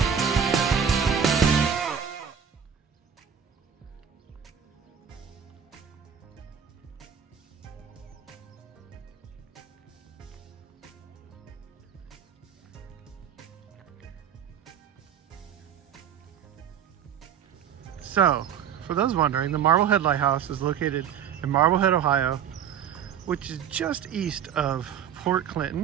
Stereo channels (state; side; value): quieter; left; 8.2 dB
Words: So, for those wondering, the Marblehead Lighthouse is located in Marblehead, Ohio, which is just east of Port